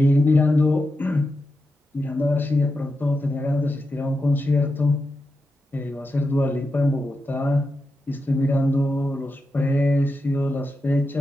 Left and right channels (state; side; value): normal; both; correlation 0.88